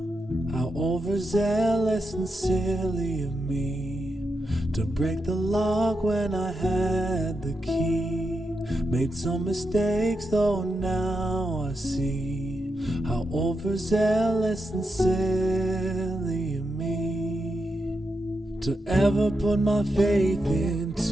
How overzealous and silly of me to break the lock when I had the key. Made some mistakes though now I see how overzealous and silly of me to ever put my faith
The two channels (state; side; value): normal; both; correlation 0.86